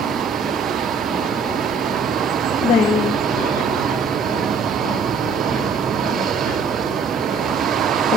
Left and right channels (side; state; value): left; quieter; 4.3 dB